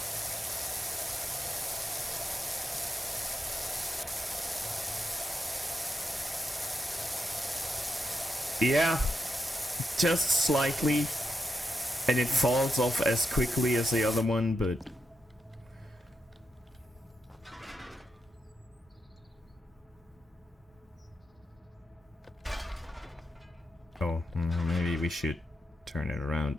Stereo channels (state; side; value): normal; both; correlation 0.85